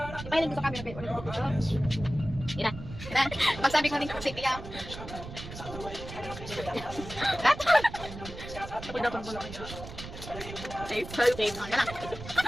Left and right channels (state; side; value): noise; right; rumble, 11 dB below the sound